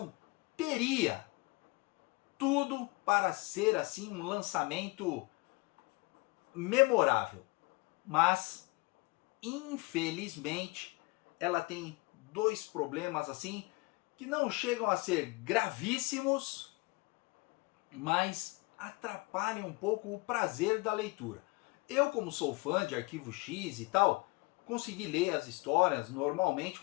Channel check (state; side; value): quieter; right; 25.4 dB